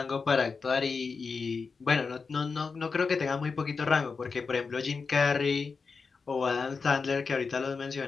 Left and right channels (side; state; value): right; quieter; 4.9 dB